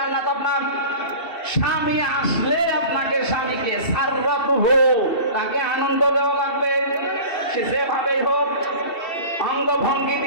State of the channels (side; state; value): right; late; 2.7 ms